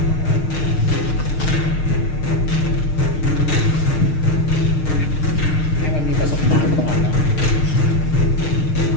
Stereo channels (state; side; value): late; right; 6.6 ms